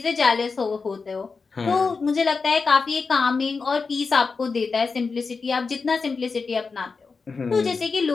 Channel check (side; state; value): right; quieter; 4.7 dB